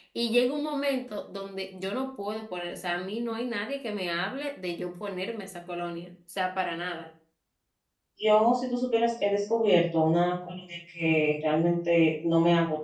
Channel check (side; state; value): both; identical; correlation 1.00